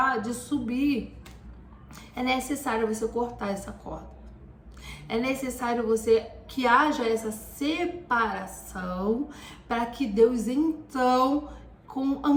de subir. É necessário você cortar essa corda. É necessário que haja essa separação para que Deus então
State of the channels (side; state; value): both; identical; correlation 1.00